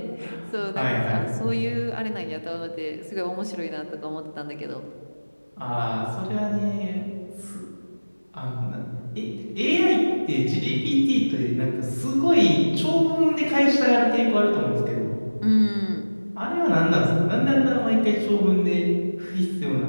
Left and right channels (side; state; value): both; inverted; correlation -1.00